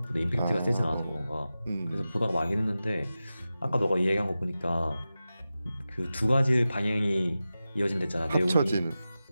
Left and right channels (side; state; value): both; inverted; correlation -0.94